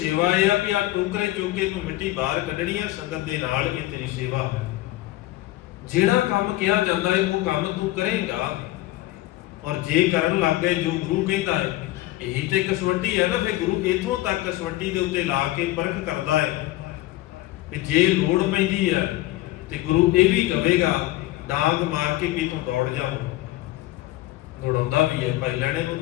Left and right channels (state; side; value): quieter; right; 17.0 dB